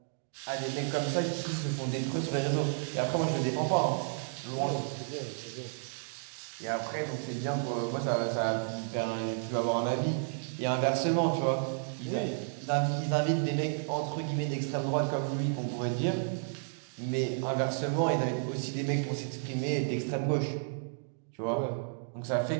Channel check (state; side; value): silent; left; digital silence